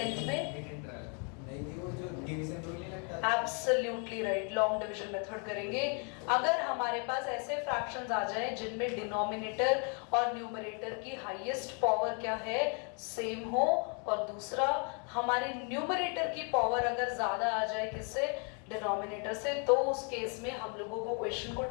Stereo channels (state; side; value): quieter; right; 37.7 dB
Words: में absolutely right, long division method करेंगे। अगर हमारे पास ऐसे फ्रैक्शंस आ जाए जिनमें डिनोमिनेटर और न्यूमरेटर की हाईएस्ट पावर क्या है, सेम हो, और दूसरा हमारे न्यूमरेटर की पावर अगर ज्यादा आ जाए किससे, डिनोमिनेटर से, तो उस केस में हम लोगों को क्वेश्चन को